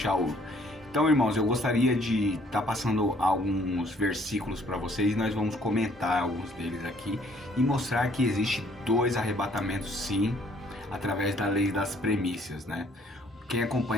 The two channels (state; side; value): normal; both; correlation 0.61